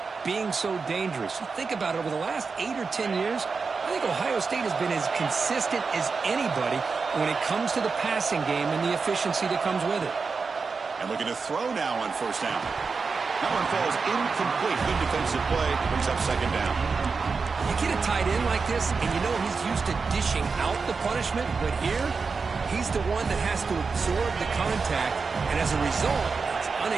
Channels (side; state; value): left; quieter; 4.8 dB